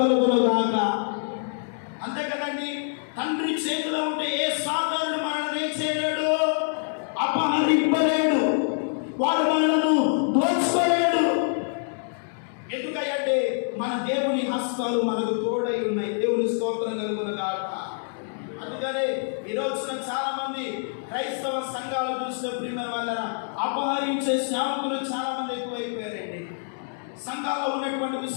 కలుగును గాక. చేతిలో ఉంటే ఏ సాతానుడు మనల్ని ఏం చేయలేడు, అపహరింపలేడు, వాడు మనలను దోచుకోలేడు. ఎందుకంటే మన దేవుని హస్తాలు మనకు తోడై ఉన్నాయి. దేవుని స్తోత్రం కలుగునుగాక. అందుకనే ఈ రోజున చాలా మంది క్రైస్తవ సంఘాలు చూసిన ప్రియమైన వాళ్ళ అపహరించే సేవకులు చాలా మంది ఎక్కువైపోయారండి. సంఘాల్లో ఉన్నటువంటి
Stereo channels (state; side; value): silent; right; digital silence